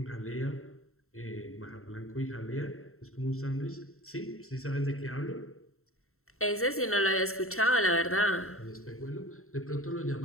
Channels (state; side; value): late; right; 0.63 ms